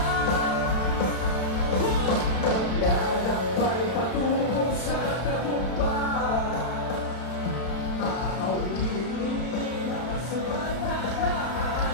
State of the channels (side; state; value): right; late; 32 ms